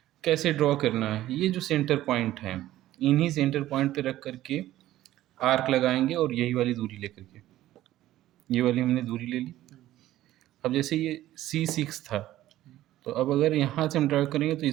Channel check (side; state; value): left; quieter; 14.5 dB